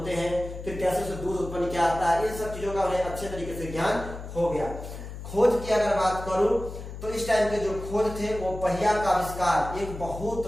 हैं, फिर कैसे उसे दूध उत्पन्न किया जाता है, इन सब चीजों का उन्हें अच्छे तरीके से ज्ञान हो गया। खोज की अगर बात करूं तो इस टाइम के जो खोज थे वो पहिया का आविष्कार एक बहुत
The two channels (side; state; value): left; noise; hum, 10 dB below the sound